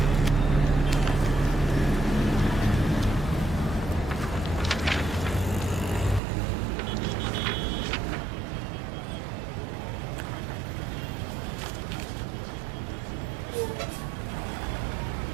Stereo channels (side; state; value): left; drops out; at 6.2 s